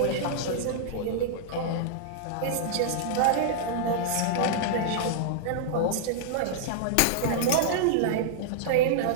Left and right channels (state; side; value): different; both; correlation -0.01